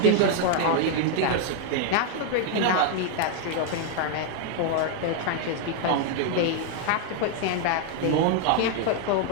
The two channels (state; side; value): different; both; correlation 0.00